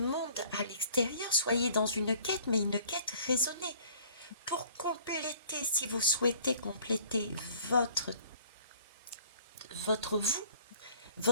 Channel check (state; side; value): inverted; both; correlation -0.54